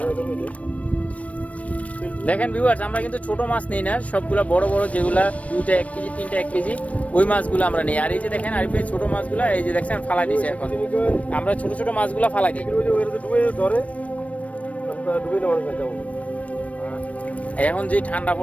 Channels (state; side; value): late; right; 0.066 ms